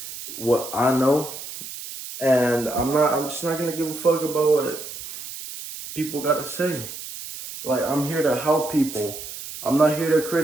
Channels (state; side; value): noise; right; hiss, 11 dB below the sound